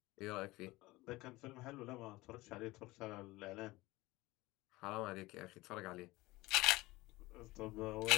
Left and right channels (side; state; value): right; quieter; 20.2 dB